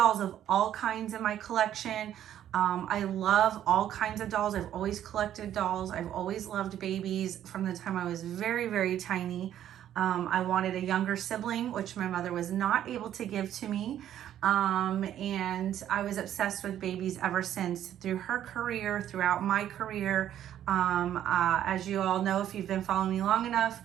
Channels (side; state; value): left; quieter; 11.1 dB